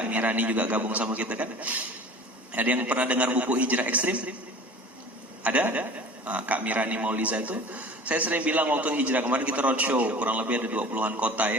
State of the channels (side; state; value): both; normal; correlation 0.41